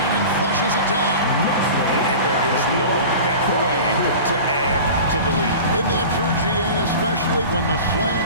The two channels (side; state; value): both; inverted; correlation -0.36